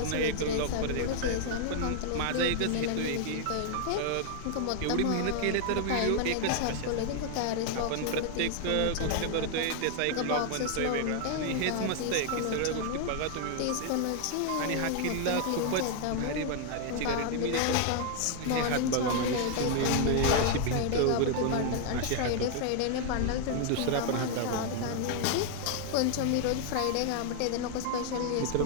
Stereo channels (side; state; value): both; different; correlation 0.00